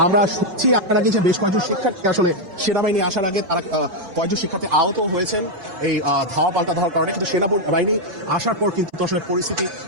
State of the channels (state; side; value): late; left; 5.3 ms